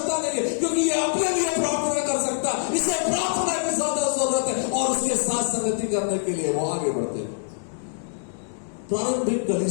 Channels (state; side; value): silent; right; digital silence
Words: नहीं है, क्योंकि ये अपने लिए प्रार्थना कर सकता है। इसे प्रार्थना की ज्यादा जरूरत है और उसके साथ संगति करने के लिए वो आगे बढ़ते हैं। प्रारंभिक